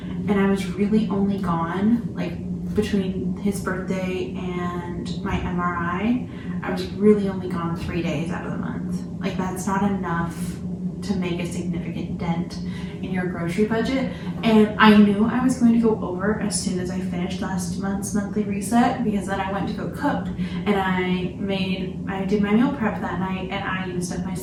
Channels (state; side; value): identical; both; correlation 1.00